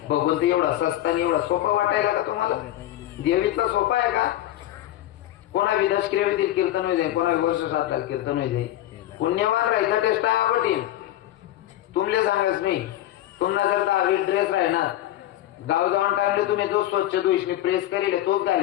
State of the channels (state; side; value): quieter; right; 13.8 dB